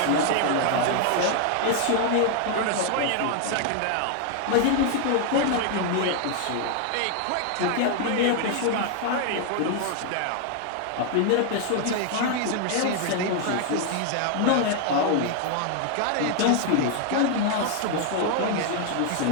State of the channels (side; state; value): both; different; correlation 0.00